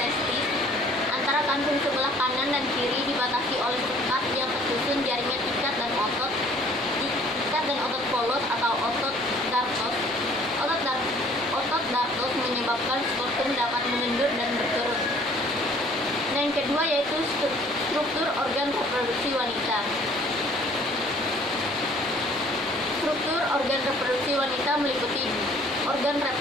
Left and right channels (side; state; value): both; normal; correlation 0.56